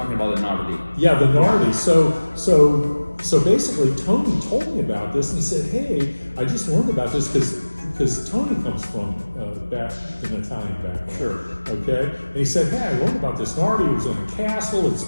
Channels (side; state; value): both; inverted; correlation -1.00